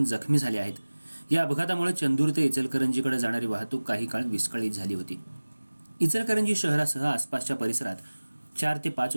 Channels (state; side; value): inverted; both; correlation -1.00